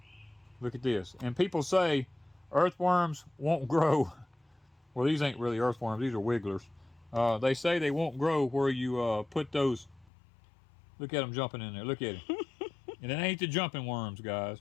look at this. And people say earthworms won't grow. Well, these ain't really earthworms. These are wigglers. They say they won't grow where you put those. Look at them jumping in there. Look at it. And it ain't the jumping worms, guys.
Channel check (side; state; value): right; drops out; at 10.1 s